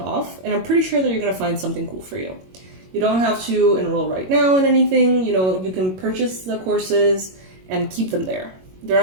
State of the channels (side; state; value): left; late; 22 ms